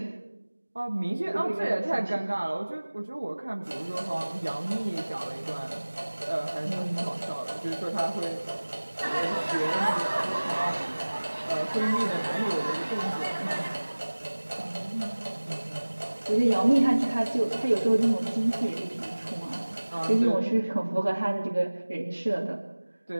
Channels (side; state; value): both; inverted; correlation -1.00